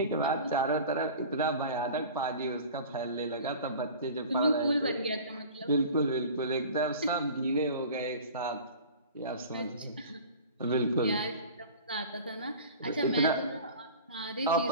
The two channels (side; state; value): both; inverted; correlation -0.40